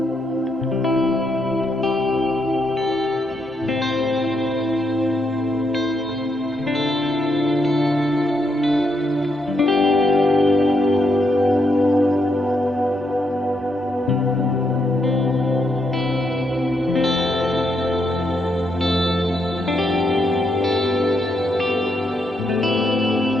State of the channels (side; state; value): both; normal; correlation 0.79